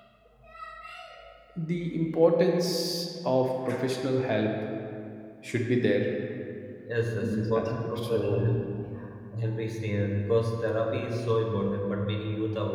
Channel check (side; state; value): both; identical; correlation 1.00